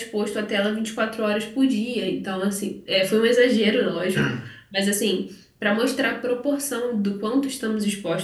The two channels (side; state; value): both; identical; correlation 1.00